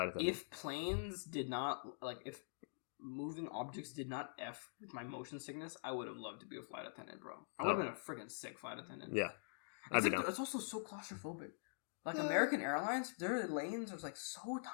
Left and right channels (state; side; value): silent; right; digital silence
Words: attendant. If planes did not if moving objects did not F with my motion sickness, I would have loved to be a flight attendant, bro. I would have been a freaking sick flight attendant. Yeah. Except it's also so claustrophobic. Like American Airlines, their lanes are like so